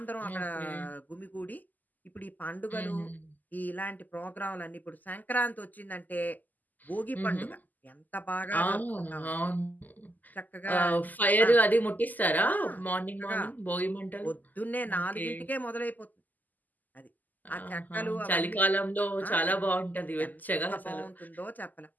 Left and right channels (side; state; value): right; late; 0.083 ms